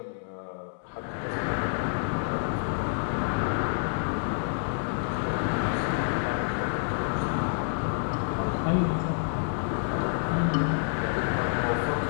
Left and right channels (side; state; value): right; silent; digital silence